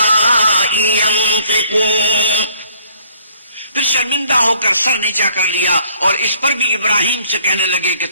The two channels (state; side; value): inverted; both; correlation -0.61